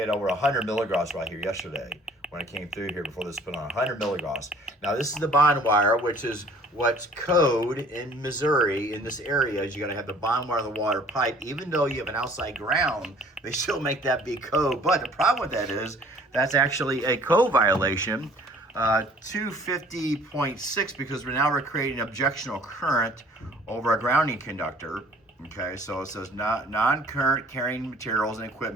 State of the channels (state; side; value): normal; both; correlation 0.54